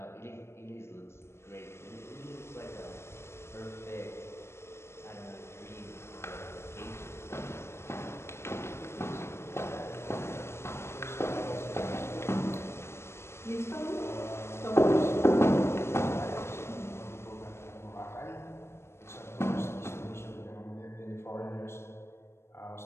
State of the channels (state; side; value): late; right; 0.12 ms